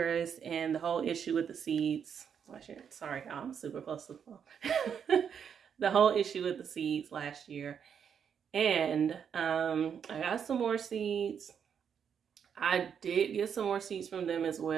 and the whole issue with the seeds. Sorry, I'm super close to the phone. The whole issue with the seeds last year. And I got some more seeds. I did get some more seeds from them as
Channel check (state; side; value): quieter; left; 7.6 dB